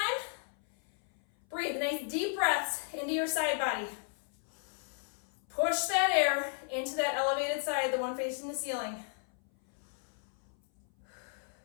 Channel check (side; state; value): right; silent; 55 dB below the other